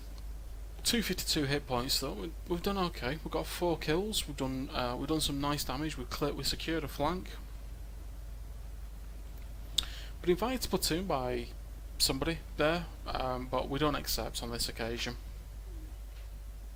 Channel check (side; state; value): both; identical; correlation 1.00